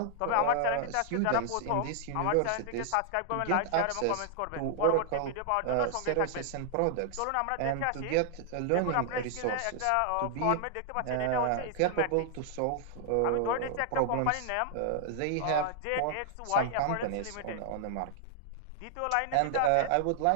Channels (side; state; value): both; different; correlation 0.00